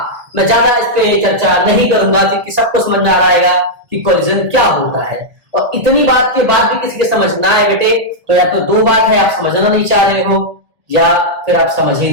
मैं ज्यादा इस पे चर्चा नहीं करूंगा क्योंकि सबको समझ में आ रहेगा कि कोलिजन क्या होता है। और इतनी बात के बाद भी किसी के समझ ना आए बेटे, तो या तो दो बात है, आप समझना नहीं चाह रहे हो या फिर आप समझ ही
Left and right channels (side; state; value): left; late; 1.4 ms